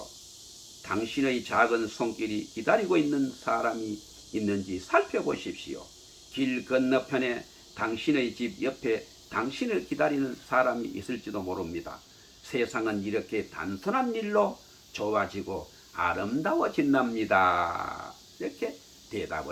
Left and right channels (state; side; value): identical; both; correlation 1.00